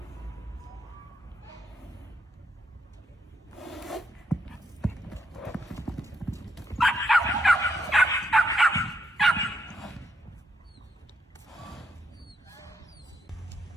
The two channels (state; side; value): normal; both; correlation 0.77